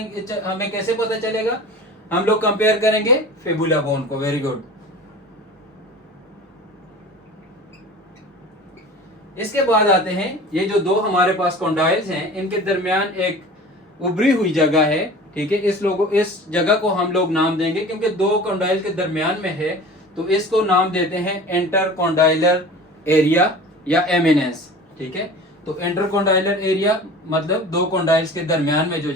हमें कैसे पता चलेगा? हम लोग कंपेयर करेंगे फेबुला बोन को। Very good. इसके बाद आते हैं ये जो 2 हमारे पास कोंडाइल्स हैं इनके दरमियान एक उभरी हुई जगह है, ठीक है। इस जगह को हम लोग नाम देंगे क्योंकि 2 कोंडाइल के दरमियान में है तो इसको नाम देते हैं इंटर कोंडाइलर एरिया या एमिनेंस, ठीक है। तो इंटरकॉन्डाइलर एरिया मतलब दो कॉन्डाइल्स के दरमियान में जो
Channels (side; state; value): both; normal; correlation 0.39